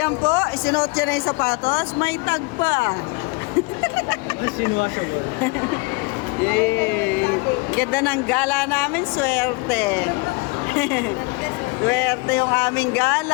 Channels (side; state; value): right; quieter; 27.2 dB